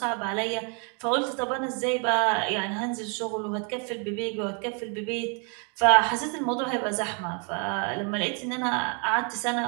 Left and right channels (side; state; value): left; quieter; 37.0 dB